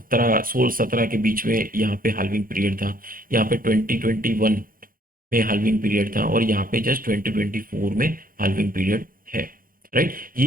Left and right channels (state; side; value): late; left; 0.41 ms